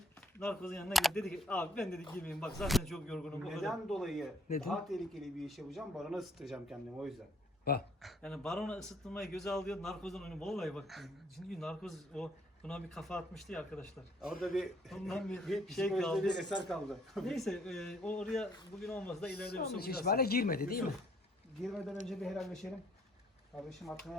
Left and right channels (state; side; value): normal; both; correlation 0.64